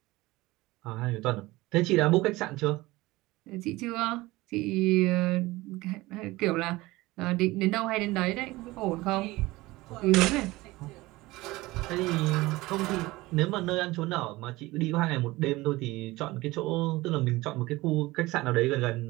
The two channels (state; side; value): quieter; left; 19.9 dB